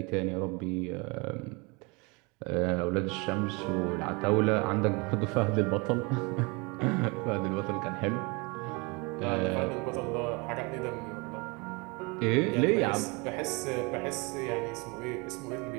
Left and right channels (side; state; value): left; quieter; 28.5 dB